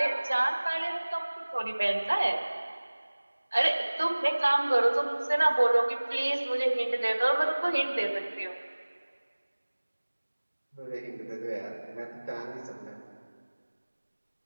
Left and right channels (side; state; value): both; inverted; correlation -1.00